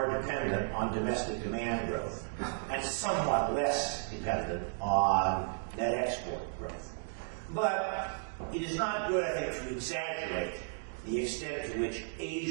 dependent on domestic demand growth and somewhat less dependent on net export growth. But it is not good, I think, to exaggerate the extent to which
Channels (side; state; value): left; silent; digital silence